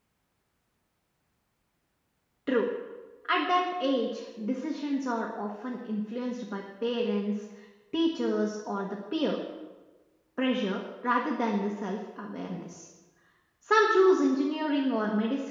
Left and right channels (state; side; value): identical; both; correlation 1.00